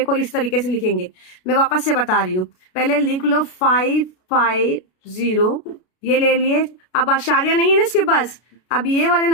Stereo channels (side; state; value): right; late; 33 ms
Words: इस तरीके से लिखेंगे, मैं वापस से बता रही हूँ। पहले लिख लो 550, ये ले लिए। अब आशार्य नहीं है ना इसके पास। अब ये वाले